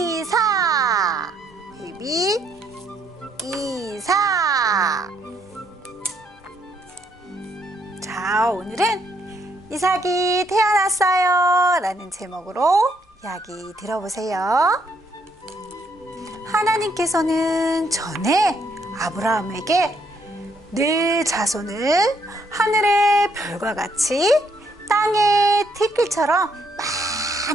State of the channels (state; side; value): normal; both; correlation 0.71